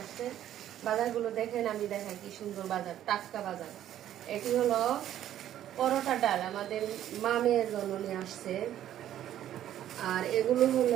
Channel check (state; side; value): quieter; left; 11.7 dB